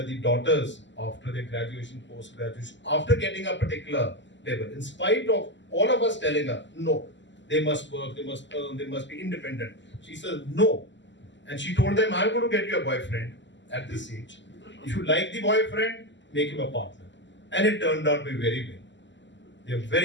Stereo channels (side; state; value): right; late; 0.53 ms